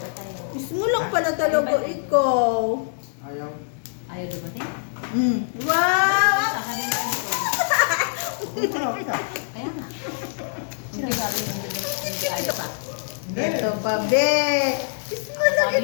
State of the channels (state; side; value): silent; right; digital silence